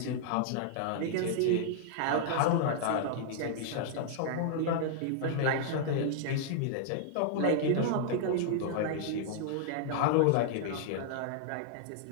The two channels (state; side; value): different; both; correlation -0.01